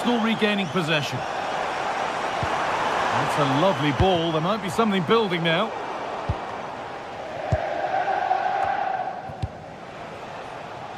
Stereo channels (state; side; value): identical; both; correlation 1.00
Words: regaining possession. That's a lovely ball. There might be something building now.